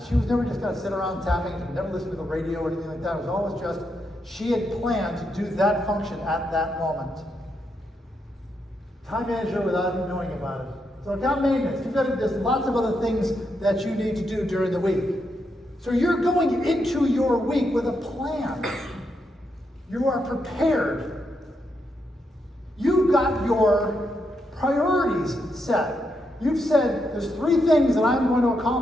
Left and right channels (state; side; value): normal; both; correlation 0.81